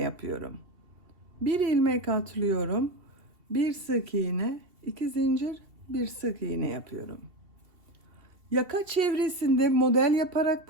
Bir ilmek atlıyorum. Bir sık iğne, 2 zincir, bir sık iğne yapıyorum. Yaka çevresinde model yaparak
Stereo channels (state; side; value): late; left; 2.7 ms